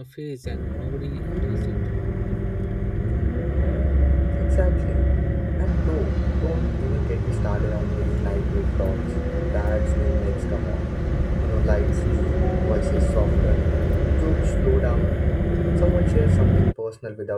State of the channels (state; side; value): identical; both; correlation 1.00